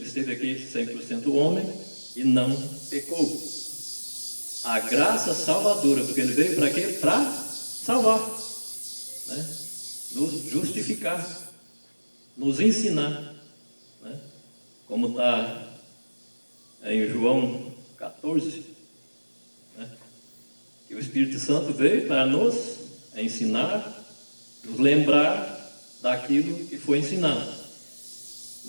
esteve aqui 100% homem e não pecou. A graça salvadora, porque Ele veio para quê? Para salvar, né? Nos justificar, nos ensinar, né? Como está em João 14, né? Que o Espírito Santo veio para nos ensinar, nos lembrar daquilo que foi ensinado.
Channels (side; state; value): both; inverted; correlation -1.00